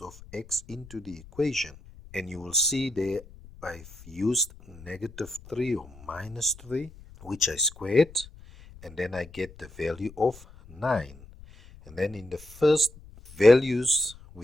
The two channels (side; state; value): left; noise; rumble, 20 dB below the sound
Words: of x into the equation. And you will see there I've used -3 or -3, which I squared, and then I get the value of 9. And then in the first values